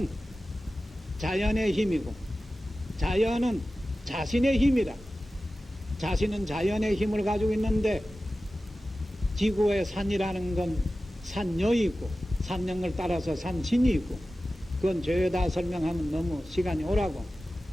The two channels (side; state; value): both; normal; correlation 0.95